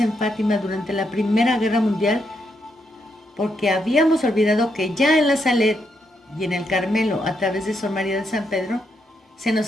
en Fátima durante la Primera Guerra Mundial, porque habíamos olvidado que ya en la Salet y en el Carmelo, a través de Sor María de San Pedro, se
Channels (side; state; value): both; normal; correlation 0.79